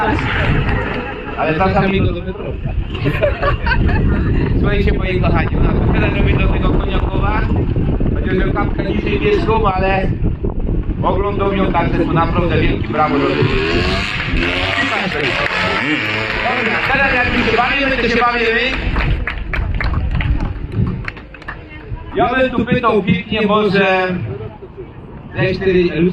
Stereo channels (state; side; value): identical; both; correlation 1.00